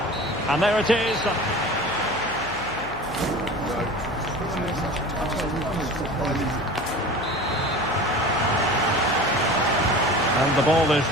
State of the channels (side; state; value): left; noise; hum, 15 dB below the sound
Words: And there it is. And the ball is